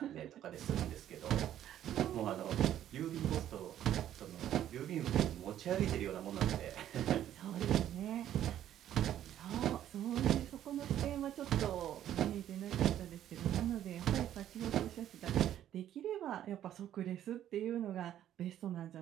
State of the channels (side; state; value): left; quieter; 11.4 dB